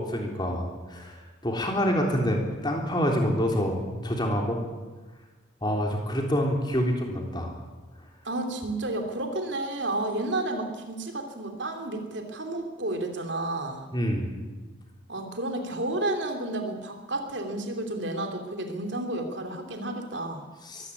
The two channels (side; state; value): both; normal; correlation 0.43